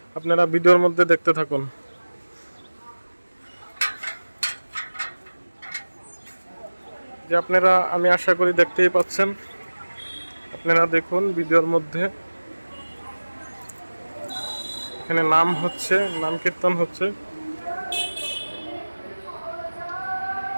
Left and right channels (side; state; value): both; inverted; correlation -1.00